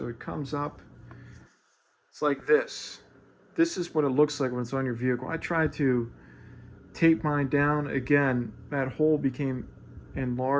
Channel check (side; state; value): both; identical; correlation 1.00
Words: it comes up, it's like this. This is what it looks like when it's on your vehicle. I tried to tape mine down. Again, that hole became